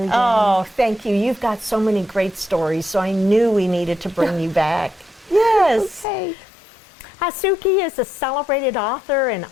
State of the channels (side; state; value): right; drops out; at 6.1 s